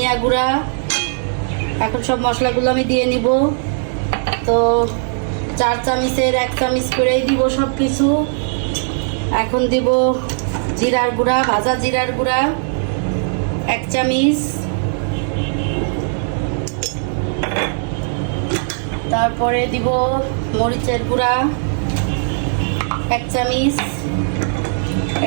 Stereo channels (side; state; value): left; silent; digital silence